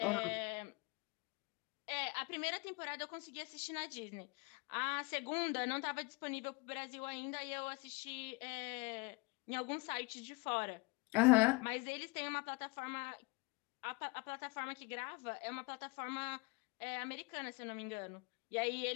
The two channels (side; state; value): right; quieter; 27.1 dB